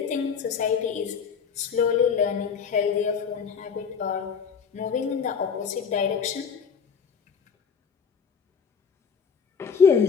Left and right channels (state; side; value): quieter; right; 6.4 dB